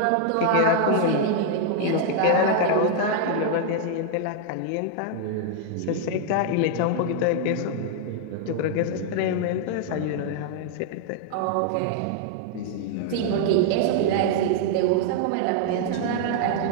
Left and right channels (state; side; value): different; both; correlation 0.00